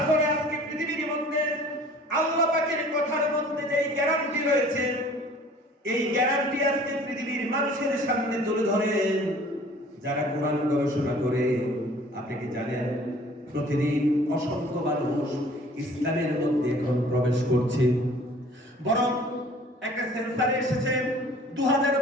ফলে আজকে পৃথিবীর মধ্যে আল্লাহ পাকের কথার মধ্যে যেই গ্যারান্টি রয়েছে, এই গ্যারান্টি আজকে পৃথিবীর মানুষের সামনে তুলে ধরেন যারা কোরআন গবেষণা করে। আপনি কি জানেন প্রতিদিন অসংখ্য মানুষ ইসলামের মধ্যে এখন প্রবেশ করছে? বরং একটা সেন্সারে এসেছে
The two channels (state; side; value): normal; both; correlation 0.50